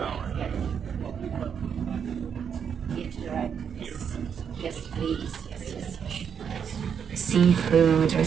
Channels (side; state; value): left; quieter; 7.4 dB